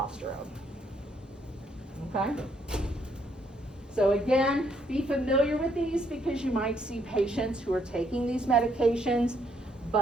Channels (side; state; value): both; normal; correlation 0.71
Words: Okay? So again, be familiar with these because you might see patients who are taking these medications,